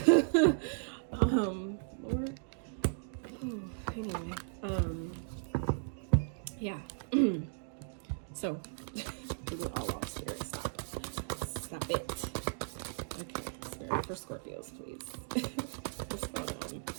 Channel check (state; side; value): silent; left; digital silence